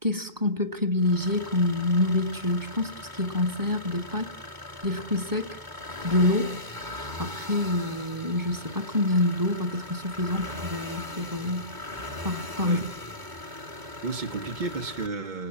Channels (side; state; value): left; late; 2.2 ms